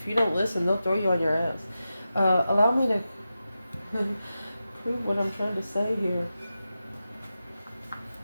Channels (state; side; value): inverted; both; correlation -0.91